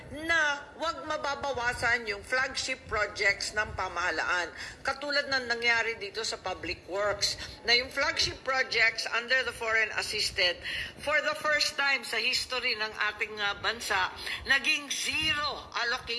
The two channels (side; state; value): both; identical; correlation 1.00